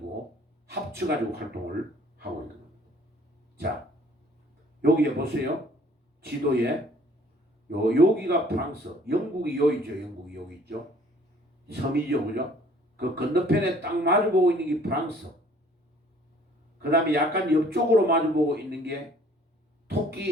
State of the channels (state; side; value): normal; both; correlation 0.56